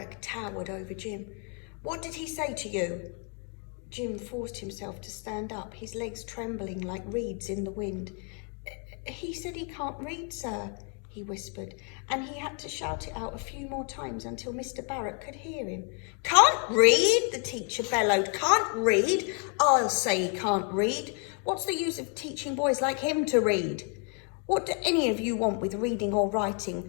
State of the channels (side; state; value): right; quieter; 39.1 dB